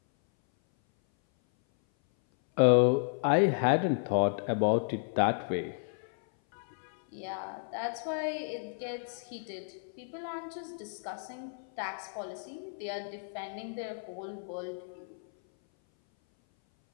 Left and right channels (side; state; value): right; silent; 56 dB below the other